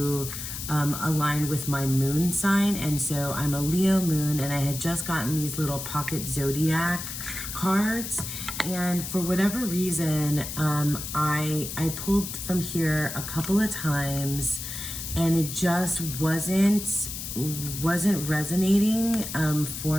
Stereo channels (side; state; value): left; noise; hiss, 7 dB below the sound